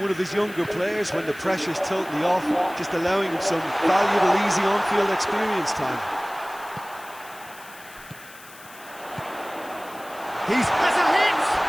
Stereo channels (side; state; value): left; noise; hiss, 20 dB below the sound